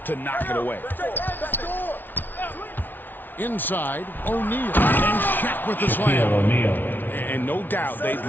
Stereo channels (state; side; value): late; right; 0.090 ms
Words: to knock it away. Inside, O'Neal. And Shaq with the slam. O'Neal. And no doubt they'd